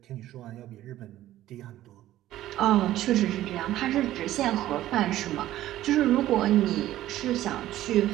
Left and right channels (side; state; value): left; quieter; 14.1 dB